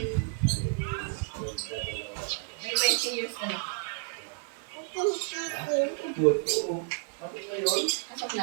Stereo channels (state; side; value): silent; left; digital silence